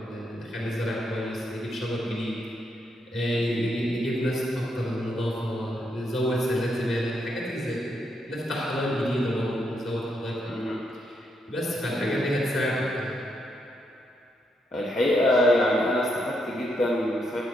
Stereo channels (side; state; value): both; normal; correlation 0.79